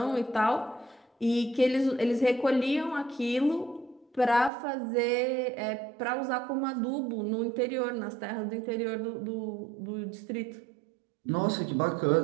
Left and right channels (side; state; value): left; drops out; at 4.5 s